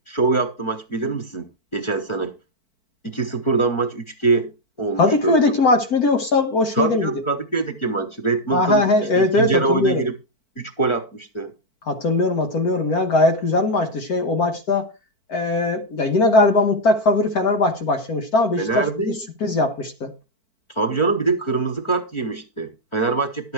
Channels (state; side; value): late; right; 4.5 ms